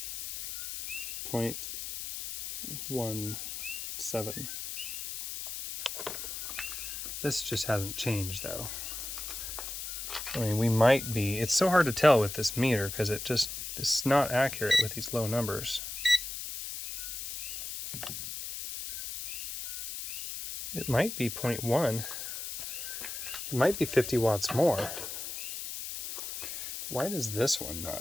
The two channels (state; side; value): noise; left; hiss, 6 dB below the sound